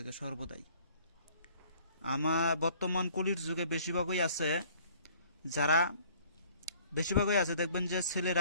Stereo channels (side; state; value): both; inverted; correlation -0.56